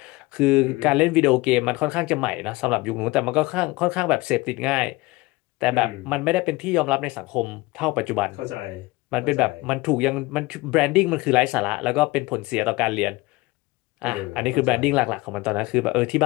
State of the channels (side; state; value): right; quieter; 21.8 dB